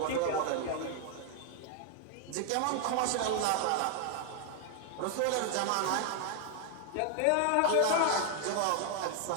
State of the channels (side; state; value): both; different; correlation 0.00